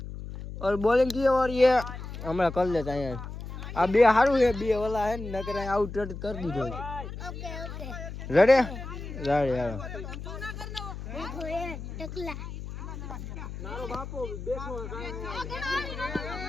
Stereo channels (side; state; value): left; noise; hum, 9 dB below the sound